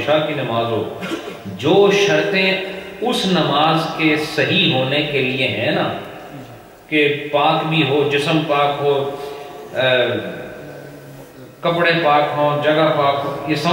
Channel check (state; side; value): identical; both; correlation 1.00